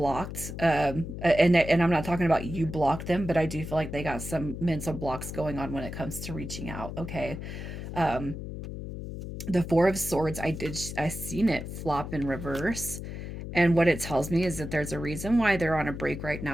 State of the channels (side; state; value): left; noise; hum, 8 dB below the sound